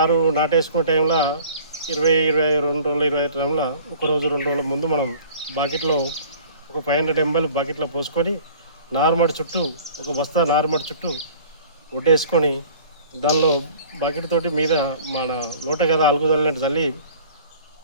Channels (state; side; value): inverted; both; correlation -0.47